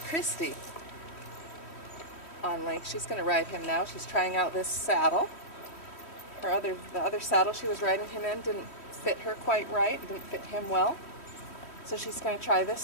Christy, on Link. She's going to ride him now. She's trying out this saddle. The other saddle she was riding him in didn't fit her quite right, didn't fit him well. So she's going to try this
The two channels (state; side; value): late; right; 3.1 ms